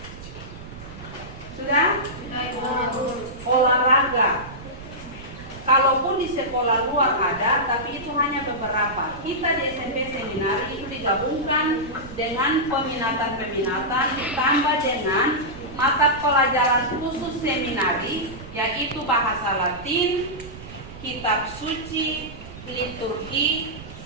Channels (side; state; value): right; noise; rumble, 15 dB below the sound